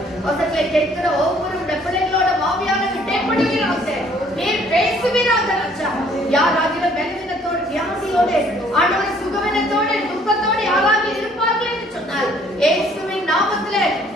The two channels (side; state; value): both; normal; correlation 0.60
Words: வசனங்களை கேட்கிற ஒவ்வொரு பிள்ளைகளோட மாவியாக இடைப்படுகிறாங்க. நீர் பேசுவீராக ராஜா. யாராகிலும் பலவீனத்தோடு வியாதியோடு ஆண்டவரை சுகவீனத்தோடு துக்கத்தோடு யாராக இருப்பார்கள் என்று சொன்னால் இயேசுவின் நாமத்திலே